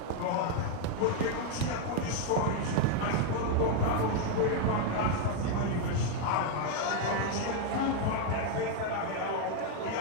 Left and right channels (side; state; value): both; different; correlation 0.01